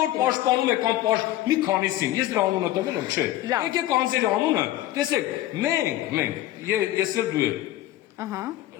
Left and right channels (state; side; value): quieter; right; 14.8 dB